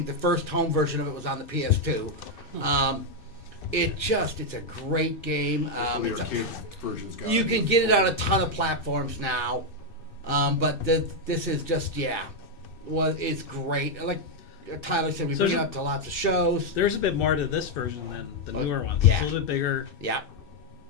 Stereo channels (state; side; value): late; right; 2.6 ms